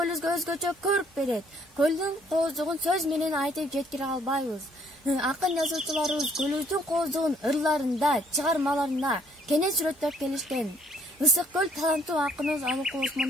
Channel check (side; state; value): both; normal; correlation 0.65